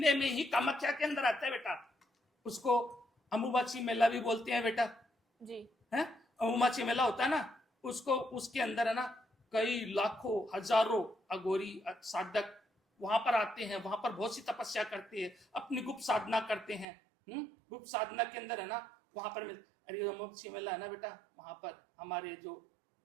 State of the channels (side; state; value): left; drops out; at 16.9 s